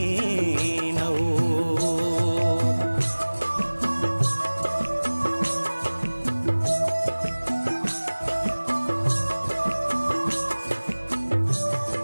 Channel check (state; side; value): inverted; both; correlation -1.00